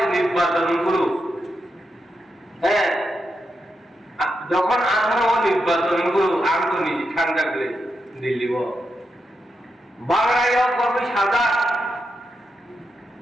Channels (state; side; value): normal; both; correlation 0.86